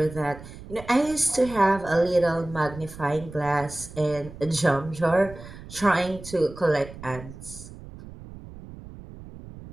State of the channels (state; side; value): noise; right; rumble, 15 dB below the sound